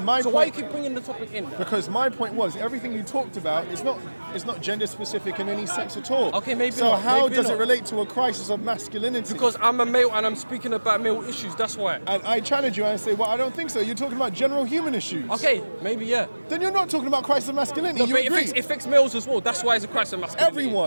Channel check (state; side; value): inverted; both; correlation -1.00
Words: my so why you point- keep bringing the topic in? Because my point was everything you talked about is not gender specific in any sense at all. Okay, maybe So not, how maybe does not. it relate to a crisis of masculinity? Because I'm a male and I'm speaking about male issues. That's why. and I challenge you and I say, well, I don't think so. You're talking about general human issues. Okay, maybe yeah. Then you're not talking about crisis of masculinity. No, You but agree? it affects males as well. That's why it's a crisis of masculinity.